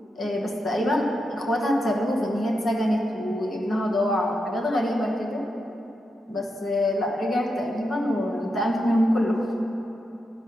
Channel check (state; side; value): normal; both; correlation 0.86